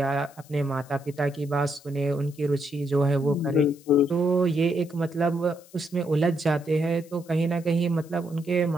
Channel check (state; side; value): noise; left; hiss, 25 dB below the sound